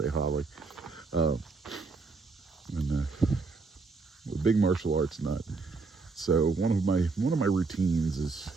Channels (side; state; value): left; quieter; 4.2 dB